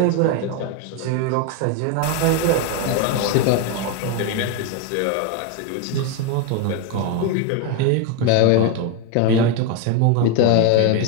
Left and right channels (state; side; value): different; both; correlation 0.02